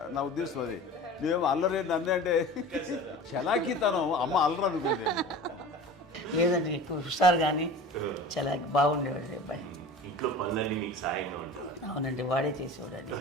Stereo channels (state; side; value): normal; both; correlation 0.37